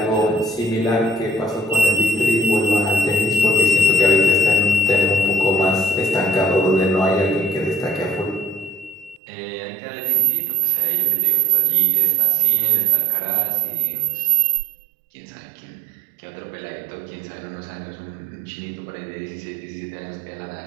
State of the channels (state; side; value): drops out; left; at 9.2 s